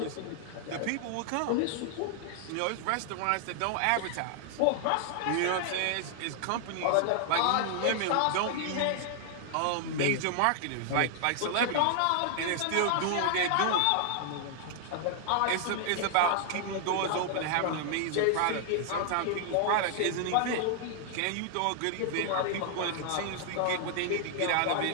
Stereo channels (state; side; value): different; both; correlation 0.00